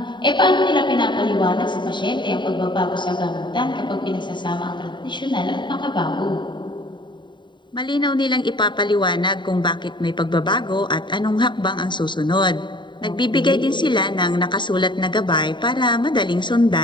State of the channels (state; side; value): late; right; 0.23 ms